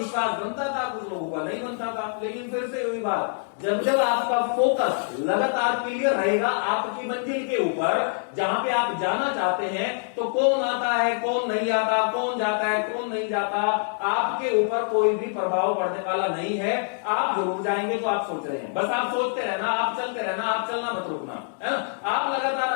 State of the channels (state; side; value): silent; right; digital silence